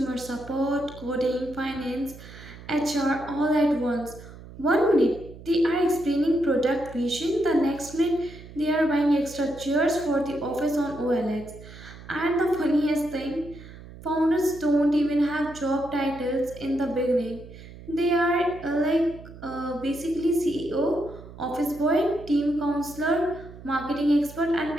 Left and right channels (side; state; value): right; noise; hum, 17 dB below the sound